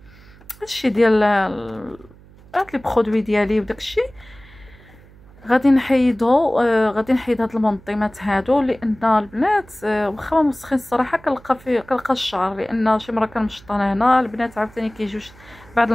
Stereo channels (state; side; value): noise; right; hum, 24 dB below the sound